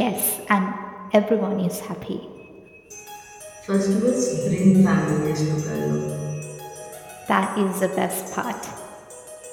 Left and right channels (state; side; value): identical; both; correlation 1.00